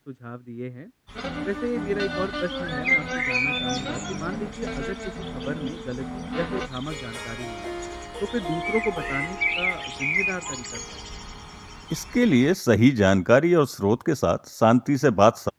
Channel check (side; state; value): both; identical; correlation 1.00